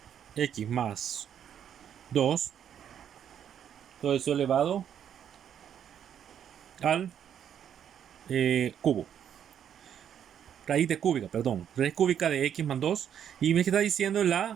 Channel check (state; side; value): quieter; left; 9.1 dB